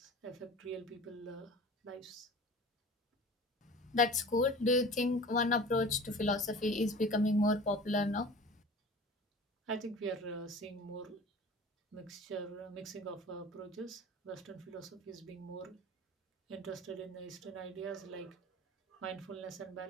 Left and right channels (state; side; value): normal; both; correlation 0.40